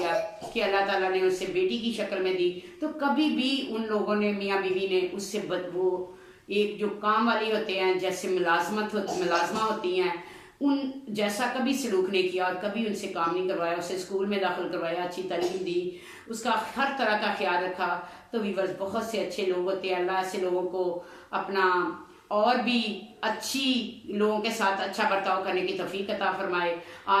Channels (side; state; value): both; identical; correlation 1.00